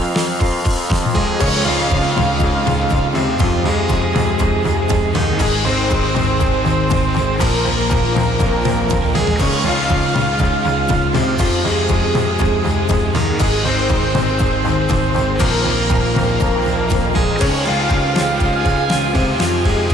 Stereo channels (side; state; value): both; normal; correlation 0.69